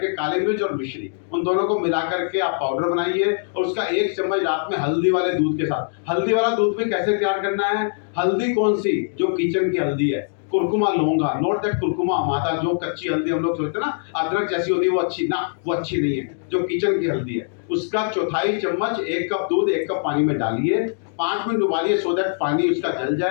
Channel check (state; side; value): silent; right; digital silence